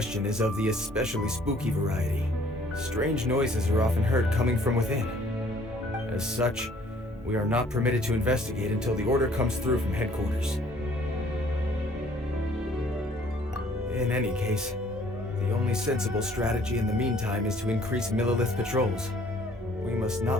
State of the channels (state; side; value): normal; both; correlation 0.58